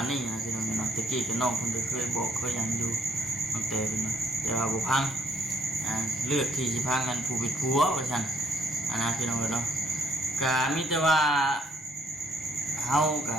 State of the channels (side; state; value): both; normal; correlation 0.67